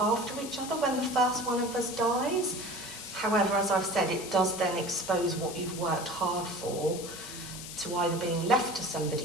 each other when the first one of us dies. However, as I've said, it does then expose what you've worked hard for to either being left to somebody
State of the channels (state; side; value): noise; left; hiss, 11 dB below the sound